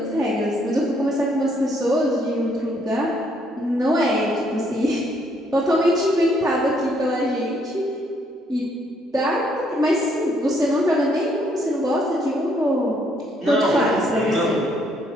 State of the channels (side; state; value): both; normal; correlation 0.69